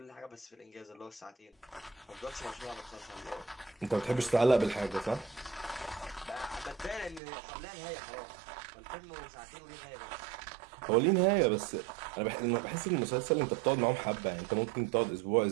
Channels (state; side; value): drops out; left; at 7.2 s